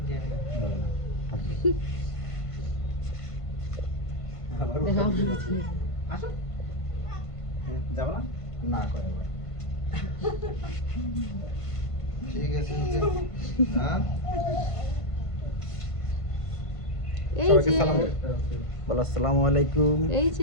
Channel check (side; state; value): right; late; 1.5 ms